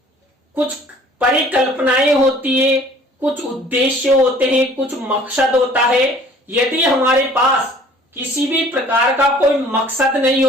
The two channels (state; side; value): normal; both; correlation 0.53